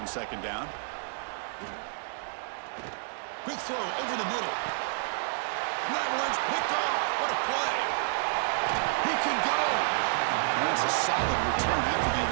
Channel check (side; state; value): left; silent; 58 dB below the other